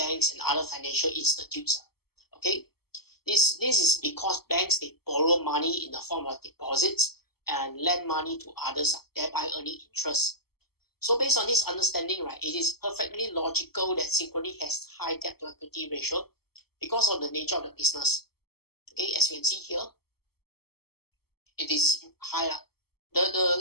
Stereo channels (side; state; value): right; late; 0.96 ms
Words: and other financial institutes. Okay. This is because banks, they borrow money in the form of deposits and lend money to others, thereby earning interest. So based on this understanding, right, it is perfectly logical that Synchrony has high debt to equity ratio because of the nature of the business. Okay, as you can see here, it is high.